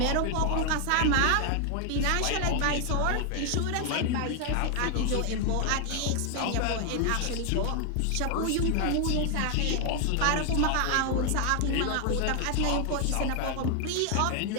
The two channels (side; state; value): both; different; correlation 0.00